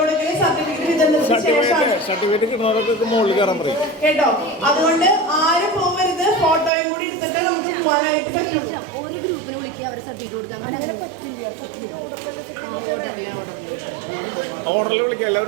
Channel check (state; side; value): drops out; left; at 6.7 s